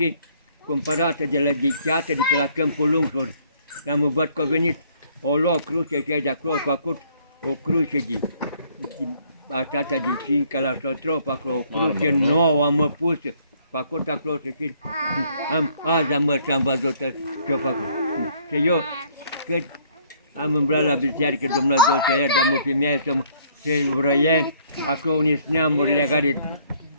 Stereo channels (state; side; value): inverted; both; correlation -0.63